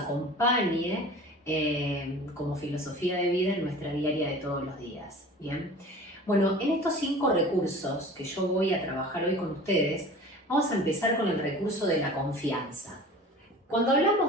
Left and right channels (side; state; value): both; normal; correlation 0.41